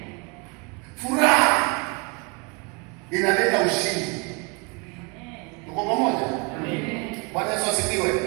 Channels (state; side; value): quieter; left; 30.7 dB